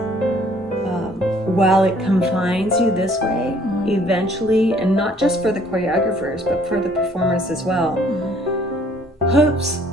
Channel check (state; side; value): normal; both; correlation 0.60